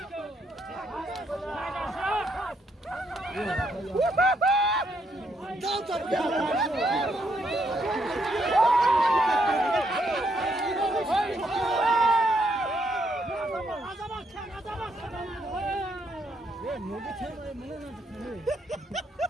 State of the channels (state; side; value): normal; both; correlation 0.74